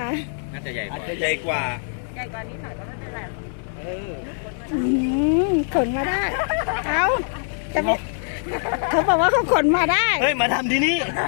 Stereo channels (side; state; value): right; silent; digital silence